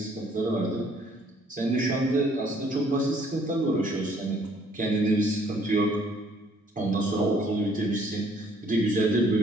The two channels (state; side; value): normal; both; correlation 0.62